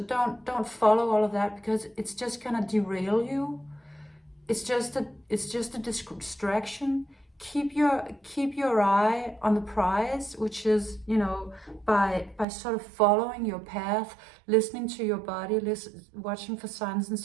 follow all of that, because it's just gonna derail you. It's just a distraction. Keep your eye on the prize, which is, you know, by sort of following your path, listening to your body, watching for signs and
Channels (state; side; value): drops out; left; at 12.5 s